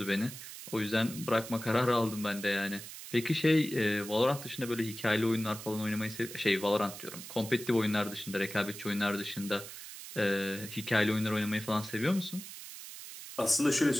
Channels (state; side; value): noise; right; hiss, 12 dB below the sound